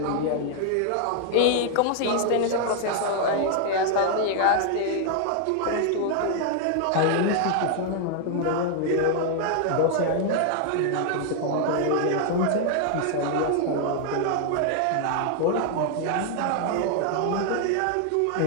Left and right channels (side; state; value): both; different; correlation 0.00